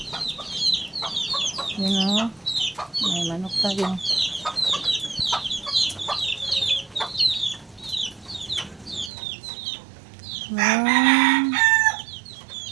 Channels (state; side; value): drops out; left; at 9.1 s